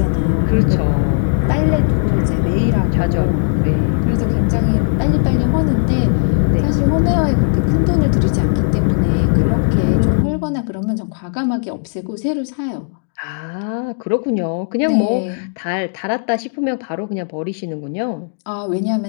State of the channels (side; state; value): right; silent; digital silence